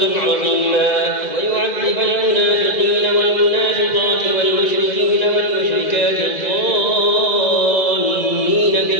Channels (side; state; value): right; late; 1.9 ms